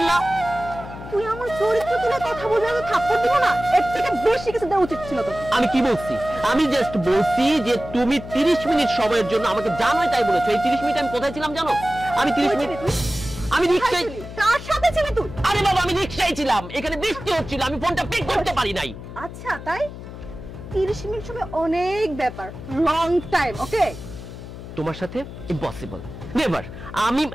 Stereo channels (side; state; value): left; noise; hum, 12 dB below the sound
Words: তুই আমার চরিত্র তুলে কথা বলবি, আমি থাপ্পড় দিব না? এর থেকে বেশি কিছু দেওয়া উচিত ছিল তোকে। আমি কি বলছি? আমি জাস্ট বলছি যে তুমি 30 মিনিট সময়ের জন্য আমাকে জানোই তাই বলেছো। এই 30 মিনিট আমি কোথায় ছিলাম জানো? আমি 30 মিনিট আমি রিকশায়। কার সাথে ছিলি তুই? আরে বাবা আমি রিকশায় ছিলাম, এখানে বৃষ্টি হচ্ছিল, আমি ফোনটা পিক করতে পারি নাই। আচ্ছা তাই? 30 মিনিট সময় অনেক ব্যাপার, লং টাইম। ওকে, তোমার সাথে ইম্পসিবল, নেভার।